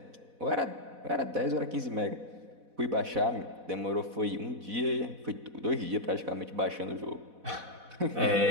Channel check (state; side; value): late; left; 4.1 ms